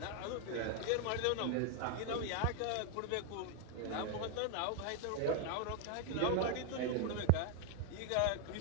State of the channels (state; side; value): different; both; correlation 0.01